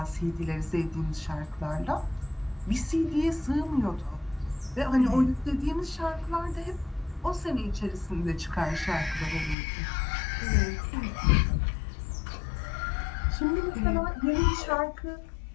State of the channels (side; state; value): right; drops out; at 9.6 s